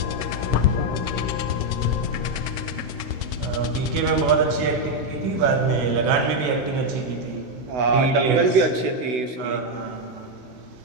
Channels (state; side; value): late; left; 16 ms